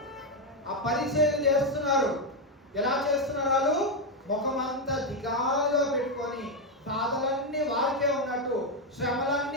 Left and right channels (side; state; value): both; normal; correlation 0.04